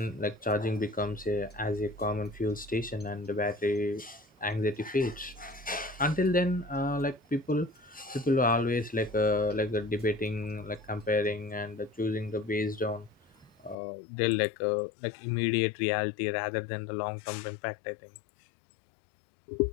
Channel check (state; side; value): drops out; right; at 13.8 s